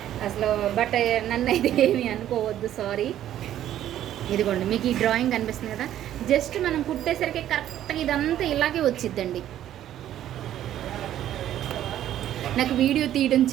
అసలు బట్ నన్ను అయితే ఏమీ అనుకోవద్దు, సారీ. ఇదిగోండి, మీకు ఈ డ్రాయింగ్ కనిపిస్తుంది కదా, జస్ట్ మనం కుట్టేసరికి కరెక్ట్గా ఇదంతా ఇలాగే వచ్చిద్దండి. నాకు వీడియో తీయడం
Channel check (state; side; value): quieter; left; 11.8 dB